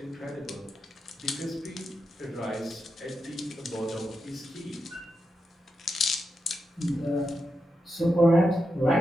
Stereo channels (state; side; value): normal; both; correlation 0.87